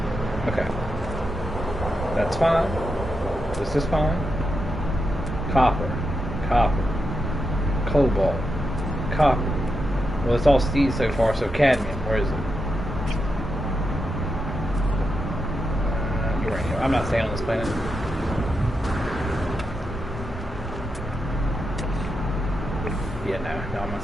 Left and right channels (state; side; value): normal; both; correlation 0.85